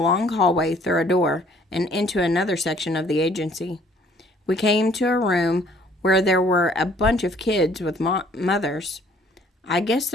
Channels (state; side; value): normal; both; correlation 0.59